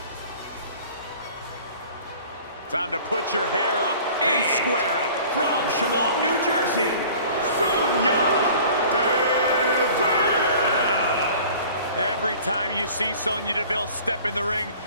Time to put your hair up and square up. From Chemung, New Jersey, Sonya Every time you see Sonya Deville step in the ring,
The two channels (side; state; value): both; inverted; correlation -0.46